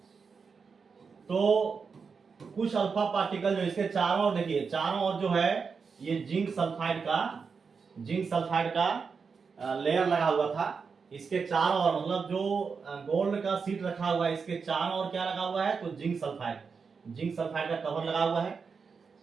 तो कुछ अल्फा पार्टिकल जो इसके चारों ओर, देखिए चारों ओर जो है ये जिंक सल्फाइड का लेयर लगा हुआ था। इसके चारों ओर, मतलब जो गोल्ड का सीट रखा हुआ है, इसके चारों ओर क्या लगा हुआ है, तो जिंक सल्फाइड का कवर लगा हुआ है।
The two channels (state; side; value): quieter; left; 5.4 dB